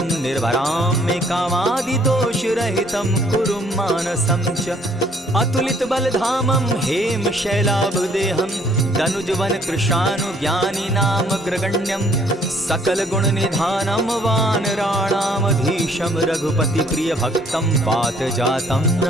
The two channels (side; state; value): both; normal; correlation 0.62